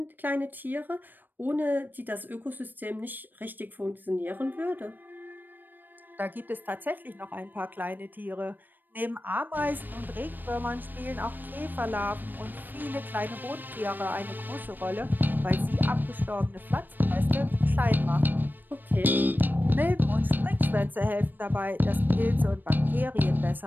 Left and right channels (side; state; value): left; late; 0.091 ms